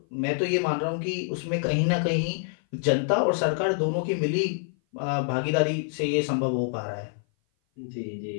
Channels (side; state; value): right; silent; 57 dB below the other